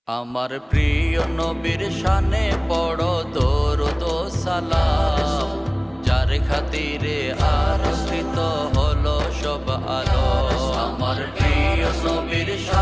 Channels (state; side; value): identical; both; correlation 1.00